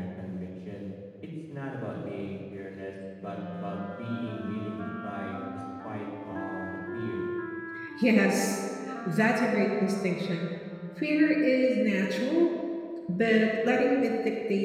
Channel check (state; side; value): identical; both; correlation 1.00